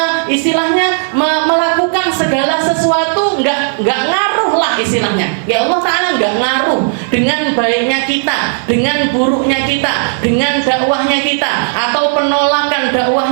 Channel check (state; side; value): silent; left; 71 dB below the other